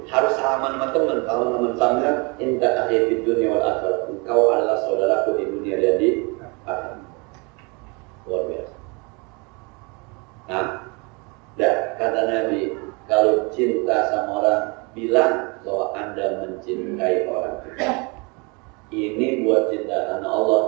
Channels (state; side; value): quieter; left; 30.3 dB